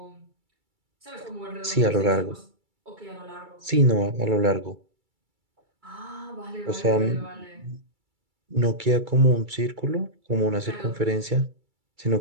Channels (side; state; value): left; late; 2.3 ms